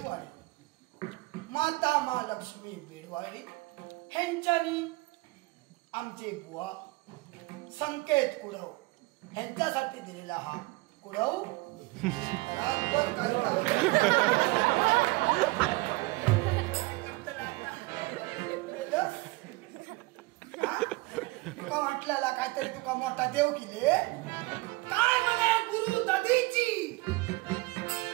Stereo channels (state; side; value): quieter; left; 22.9 dB